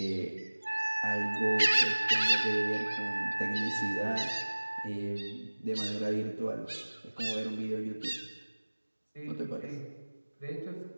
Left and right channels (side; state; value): both; inverted; correlation -1.00